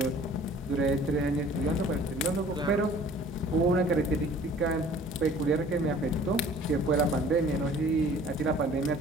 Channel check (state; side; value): normal; both; correlation 0.50